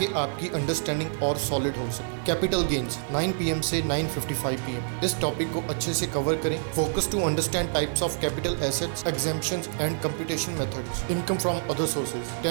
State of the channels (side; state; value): left; silent; 60 dB below the other